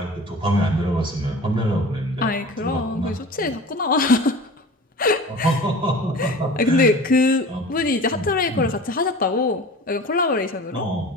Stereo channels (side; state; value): both; normal; correlation 0.38